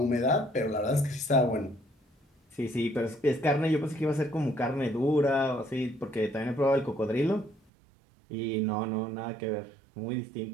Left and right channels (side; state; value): left; drops out; at 7.6 s